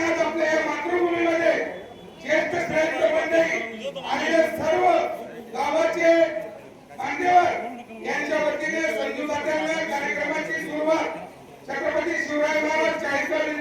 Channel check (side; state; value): both; identical; correlation 1.00